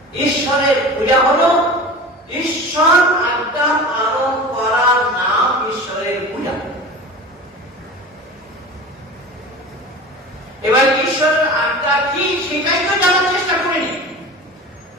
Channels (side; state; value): both; normal; correlation 0.34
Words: ঈশ্বরের পূজা হলো ঈশ্বর আজ্ঞা পালন করার নাম ঈশ্বরের পূজা। এবার ঈশ্বরের আজ্ঞা কি সেটাই তো জানার চেষ্টা করিনি।